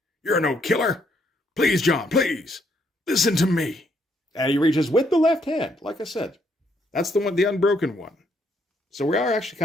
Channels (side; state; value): both; normal; correlation 0.72